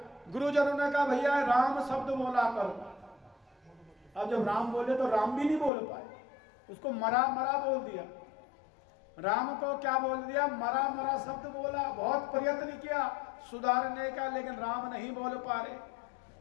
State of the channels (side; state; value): right; drops out; at 5.7 s